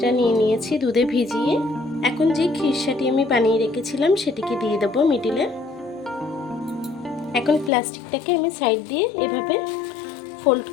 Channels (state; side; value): drops out; right; at 7.7 s